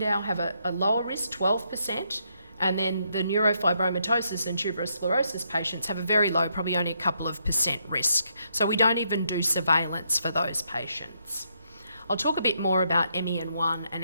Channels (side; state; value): both; inverted; correlation -0.76